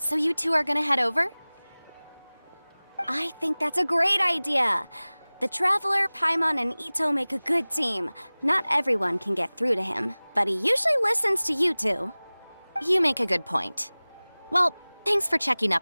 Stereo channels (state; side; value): inverted; both; correlation -1.00